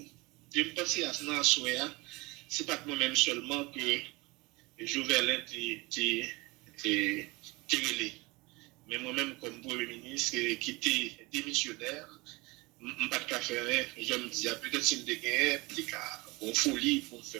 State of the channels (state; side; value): quieter; left; 24.0 dB